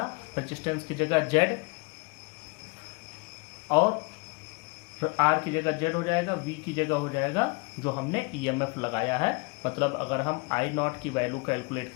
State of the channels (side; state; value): right; quieter; 28.6 dB